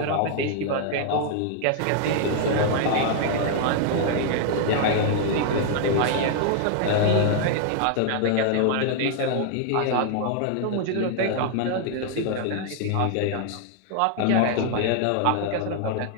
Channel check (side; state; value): both; different; correlation 0.00